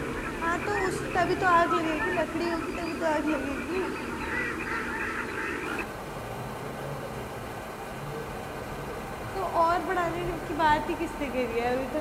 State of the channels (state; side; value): identical; both; correlation 1.00